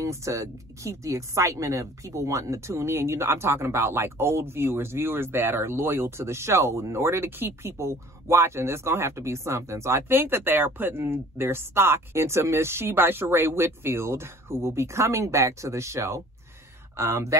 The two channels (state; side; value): normal; both; correlation 0.50